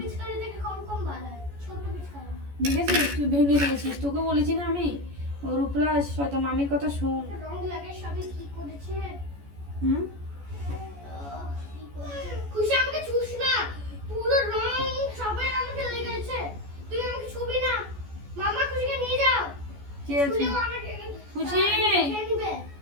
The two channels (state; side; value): late; left; 14 ms